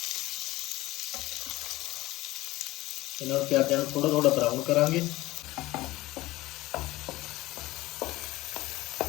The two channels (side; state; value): right; quieter; 18.4 dB